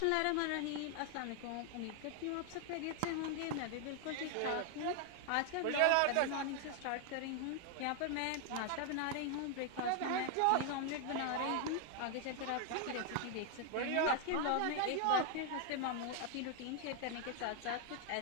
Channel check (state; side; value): different; both; correlation 0.00